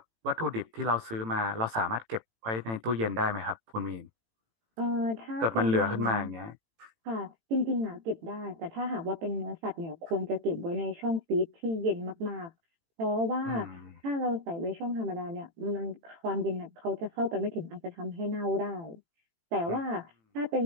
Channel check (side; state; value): left; late; 18 ms